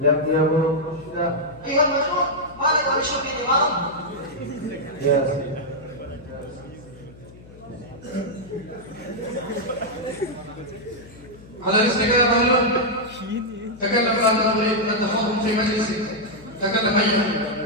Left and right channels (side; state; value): left; noise; hum, 21 dB below the sound